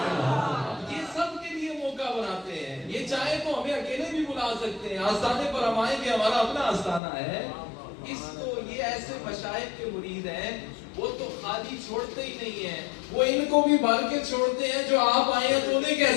یہ سب کے لیے موقع بناتے ہیں، یہ چاہے تو ہمیں اکیلے بھی بلا سکتے ہیں، آستانے پر ہم آئیں گے، ہمارا اپنا آستانہ ہے، اس کو یہ ایسے مشائخ کے مرید ہیں، وہ تو خالی چھوڑتے ہی نہیں ہیں، وہ ان کو بھی بھر کے چھوڑتے ہیں، جو آپ آئے ہیں تو انہیں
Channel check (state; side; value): drops out; right; at 7.0 s